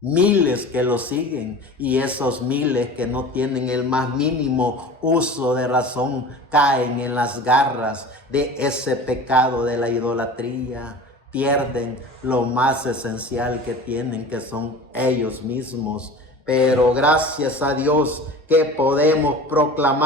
que lo siguen, y esos miles que no tienen el más mínimo uso de razón caen en las garras de ese pecado de la idolatría. Pierden lo más esencial que tienen, que son ellos mismos. Pero gracias a Dios que podemos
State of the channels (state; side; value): normal; both; correlation 0.37